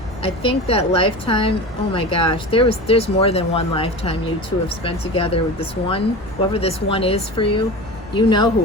I think that lifetime, oh my gosh, there's more than one lifetime you two have spent together with this one. Whoever this one is for you, you know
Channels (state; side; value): normal; both; correlation 0.30